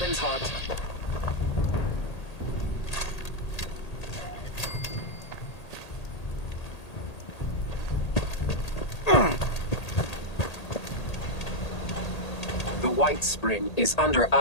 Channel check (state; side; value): late; right; 1.8 ms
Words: Weapons hot. The White Spring is under